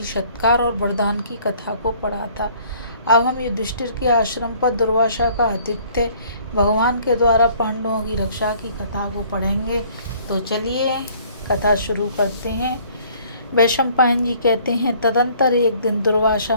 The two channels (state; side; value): inverted; both; correlation -0.57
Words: सत्कार और वरदान की कथा को पढ़ा था। अब हम युधिष्ठिर के आश्रम पर दुर्वासा का आतिथ्य भगवान के द्वारा पांडवों की रक्षा की कथा को पढ़ेंगे। तो चलिए कथा शुरू करते हैं। वैशंपायन जी कहते हैं, तदंतर एक दिन दुर्वासा